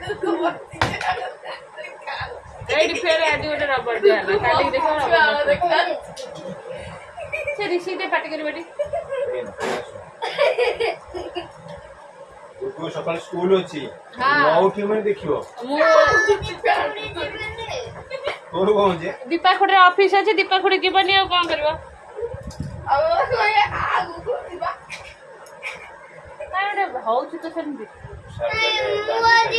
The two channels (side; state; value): both; identical; correlation 1.00